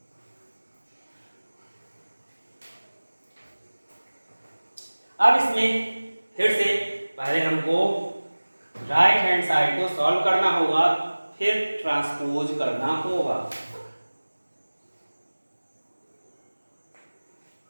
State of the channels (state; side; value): inverted; both; correlation -1.00